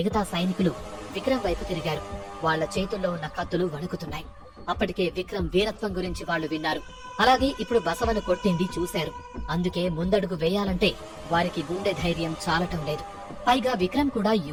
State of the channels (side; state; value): both; identical; correlation 1.00